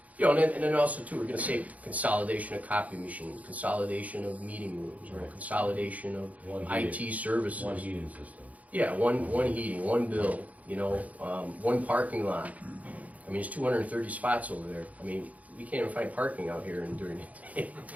You know, and then also too, we're gonna save consolidation of copy machines, consolidation of meeting rooms, or consolidation of One IT heating- services. One heating system. Yeah, one heating, one bill, you know, one parking lot. I mean, there's 230 spots over there. I mean, we can't even find parking out here during the day,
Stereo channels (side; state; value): left; late; 0.071 ms